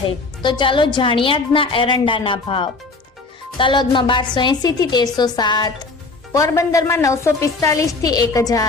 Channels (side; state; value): right; quieter; 3.8 dB